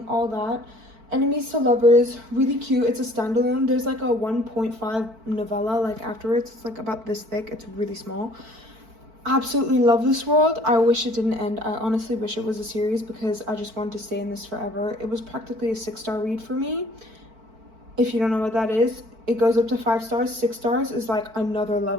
all that. Enemies to Lovers, really cute. It's a standalone. There's like a 1.5 novella like afterwards. It's like about this thick. It's really small. Absolutely love this world. I wish it didn't end. I honestly wish it was a series because I just wanted to stay in this forever. It was practically a 6-star read for me. If you don't know what that is, it goes up to 5 stars. 6 stars is like another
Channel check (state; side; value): late; left; 4.5 ms